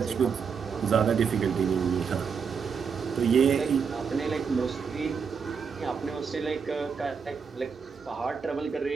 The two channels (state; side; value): quieter; left; 6.1 dB